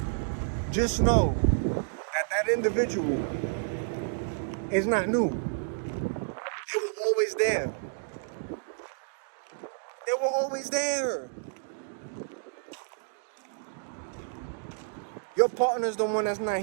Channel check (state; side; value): silent; left; digital silence